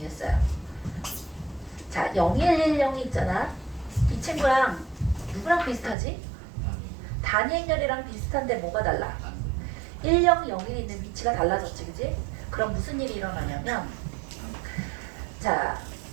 자, 0, 1, 1, 0이 있잖아. 이 친구랑 누구랑 비슷하지? 단위행렬이랑 비슷한데 뭐가 달라? 1, 0, 0, 1이 있는 위치가 달라졌지, 그지? 그럼 무슨 일이 일어나냐면, 자,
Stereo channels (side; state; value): left; drops out; at 6.0 s